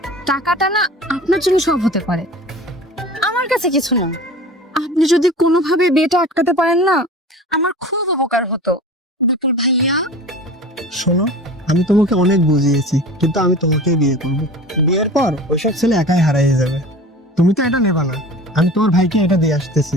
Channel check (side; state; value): both; normal; correlation 0.38